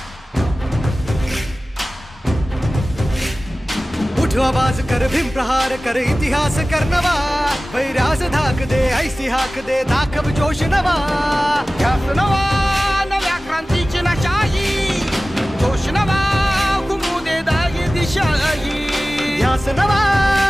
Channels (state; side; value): normal; both; correlation 0.97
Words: उठ आवाज कर, भीम प्रहार कर, इतिहास कर नवा, वैर्यास धाक दे, ऐसी हाक दे, दाखव जोश नवा. ध्यास नवा नव्या क्रांतीची नशाही, जोश नवा घुमू दे दागी दिशाही. ध्यास नवा